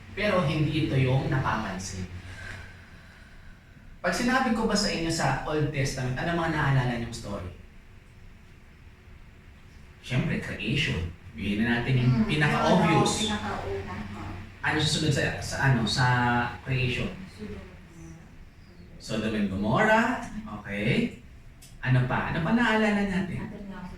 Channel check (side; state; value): both; identical; correlation 1.00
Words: Pero hindi ito yung napapansin. Pag sinabi ko ba sa inyo sa Old Testament, ano mga naalala niyong story? Siyempre, creation. Bigyan na natin yung pinaka-obvious. Ano susunod sa creation? Sodom and Gomorrah. Okay. Ano pa? Ano pa naalala natin?